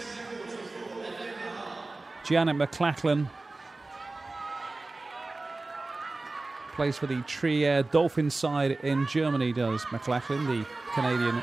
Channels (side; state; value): left; quieter; 3.2 dB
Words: Janet McLachlan plays for the Trier Dolphins side in Germany, does McLachlan, the Canadian